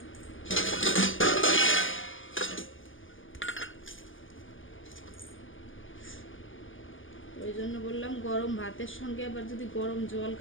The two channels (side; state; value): right; late; 0.58 ms